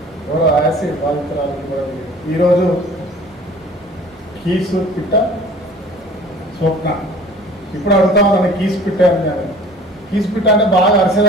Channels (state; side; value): normal; both; correlation 0.47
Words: ఎవరో యాసిడ్ బాధితురాలకి కూడా ఈరోజు కీసు పిట్ట స్వప్న ఇప్పుడు అడుగుతా ఉన్నాను కీసు పిట్ట అని. కీసు పిట్ట అంటే బాగా